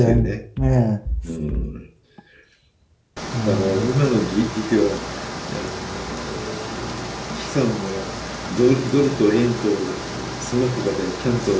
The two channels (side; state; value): both; identical; correlation 1.00